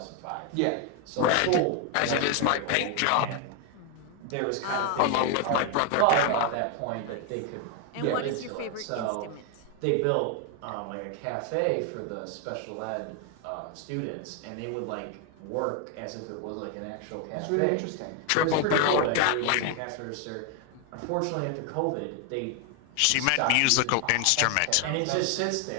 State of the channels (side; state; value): both; different; correlation 0.00